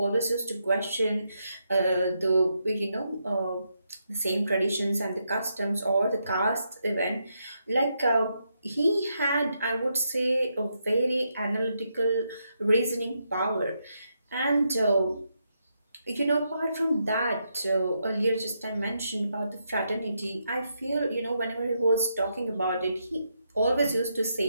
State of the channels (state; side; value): inverted; both; correlation -0.81